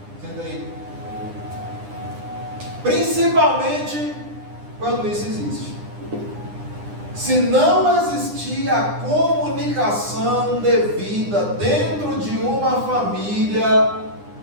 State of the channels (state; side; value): late; left; 9.9 ms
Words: Senta aí. Principalmente quando isso existe. Se não existir a comunicação devida dentro de uma família,